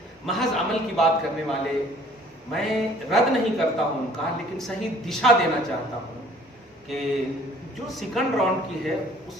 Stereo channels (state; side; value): normal; both; correlation 0.55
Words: محض عمل کی بات کرنے والے، میں رد نہیں کرتا ہوں ان کا، لیکن صحیح دشا دینا چاہتا ہوں کہ جو سیکنڈ راؤنڈ کی ہے اس